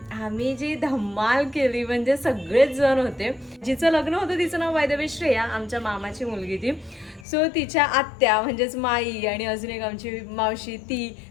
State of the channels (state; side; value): drops out; right; at 7.2 s